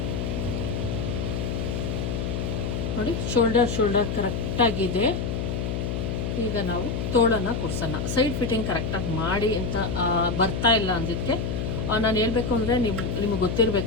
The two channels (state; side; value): noise; left; hum, 2 dB below the sound